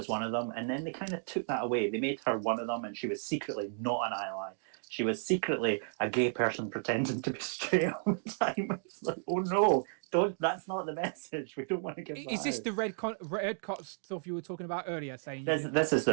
one of them, and then they kind of took that away. They made her one of them, and she was secretly not an ally. She was secretly a gay person pretending to be straight all the time. It's like, oh no, that's not the message. We don't want to give that Is this out. the red cot stuff you were talking about earlier? Saying This is the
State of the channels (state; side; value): silent; left; digital silence